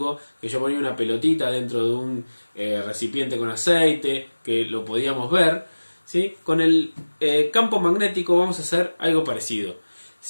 que yo ponía una pelotita dentro de un recipiente con aceite, que lo podíamos ver, ¿sí? Con el campo magnético vamos a hacer algo parecido.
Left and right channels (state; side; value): inverted; both; correlation -1.00